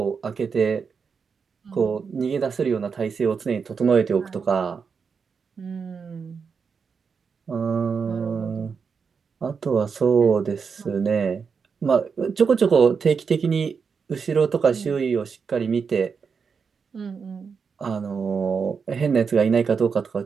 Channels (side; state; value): left; quieter; 5.8 dB